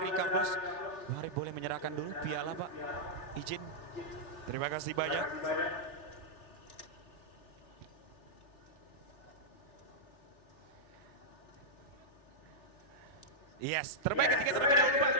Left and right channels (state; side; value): late; right; 3.4 ms